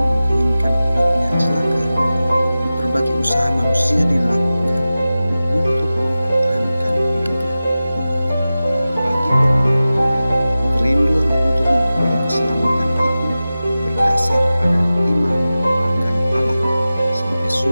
menginginkan hidupnya celaka. Berbagai usaha manusia dilakukan untuk mempertahankan hidupnya. Bagi orang beriman, kerinduan untuk memperoleh keselamatan itu berdasar pada iman akan Allah sebagai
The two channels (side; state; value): both; inverted; correlation -0.96